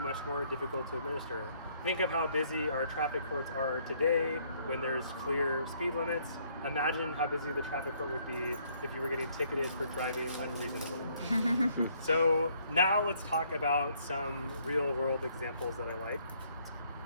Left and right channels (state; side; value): inverted; both; correlation -0.66